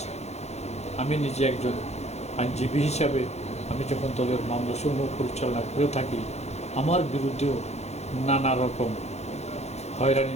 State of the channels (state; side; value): late; right; 0.31 ms